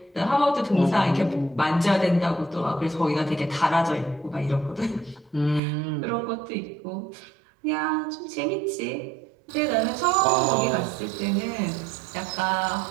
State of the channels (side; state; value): left; drops out; at 5.6 s